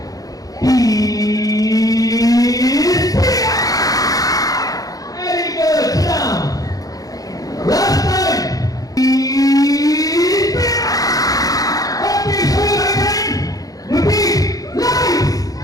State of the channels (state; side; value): late; right; 0.17 ms